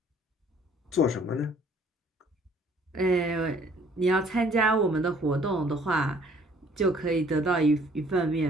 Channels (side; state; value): both; normal; correlation 0.58